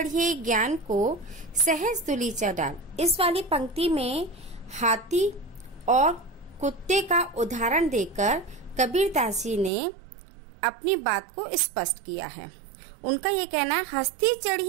ज्ञान को सहज दुली चढ़ाल। इस वाली पंक्ति में हाथी और कुत्ते का उदाहरण देकर कबीरदास जी ने अपनी बात को स्पष्ट किया है। उनका ये कहना है हस्ती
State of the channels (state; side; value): drops out; left; at 9.7 s